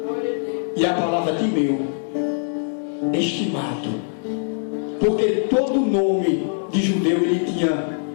e a palavra Timeu, estimado, porque todo nome de judeu ele tinha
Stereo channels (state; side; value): silent; right; 64 dB below the other